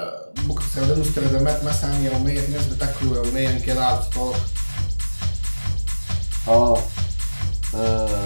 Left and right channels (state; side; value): inverted; both; correlation -1.00